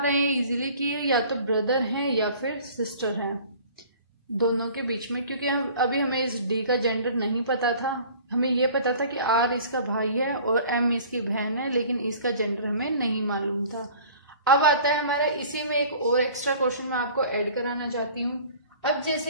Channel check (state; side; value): inverted; both; correlation -0.47